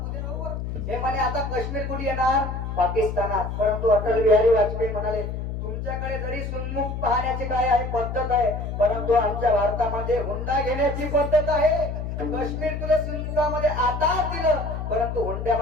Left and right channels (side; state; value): left; noise; hum, 5 dB below the sound